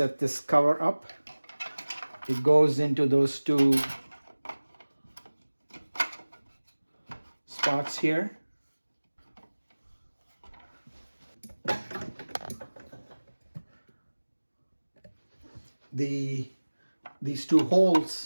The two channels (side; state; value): both; inverted; correlation -1.00